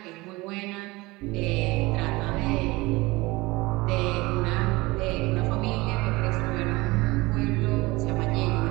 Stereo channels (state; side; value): quieter; left; 21.9 dB